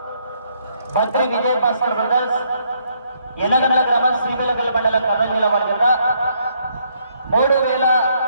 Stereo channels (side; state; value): both; inverted; correlation -0.71